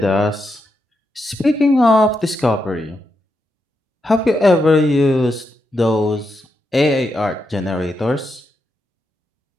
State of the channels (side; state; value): both; normal; correlation 0.84